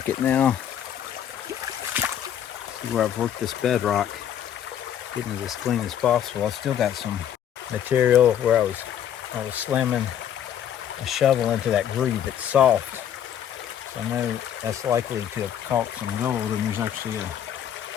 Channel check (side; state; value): right; quieter; 9.9 dB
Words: now. See where I've worked this bedrock, getting it as clean as possible. I still got some material where I was slamming a shovel into that groove. It's soft, so I know that's likely to have caught some gold, and there's actually a